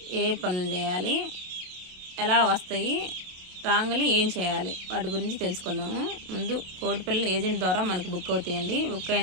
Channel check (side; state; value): left; late; 27 ms